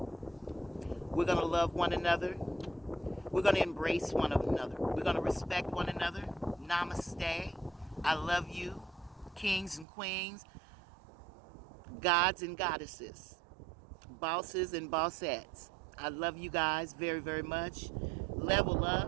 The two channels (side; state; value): left; drops out; at 9.9 s